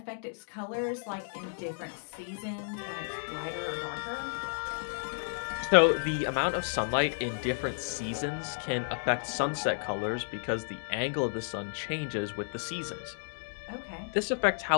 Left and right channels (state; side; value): silent; right; digital silence